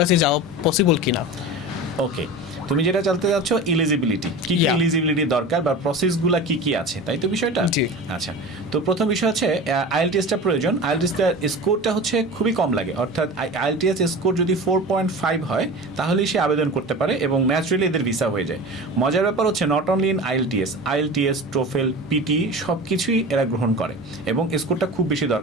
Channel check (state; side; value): normal; both; correlation 0.32